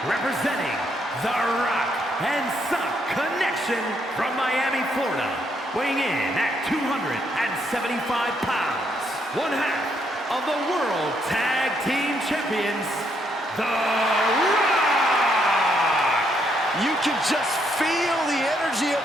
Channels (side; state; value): both; normal; correlation 0.74